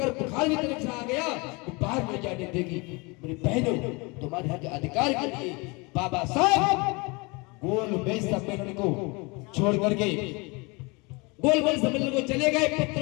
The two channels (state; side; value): quieter; right; 27.5 dB